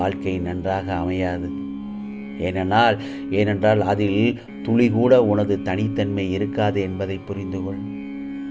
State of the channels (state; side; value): identical; both; correlation 1.00